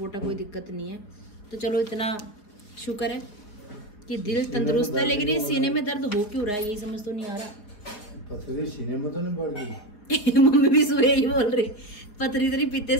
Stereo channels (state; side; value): late; right; 4.6 ms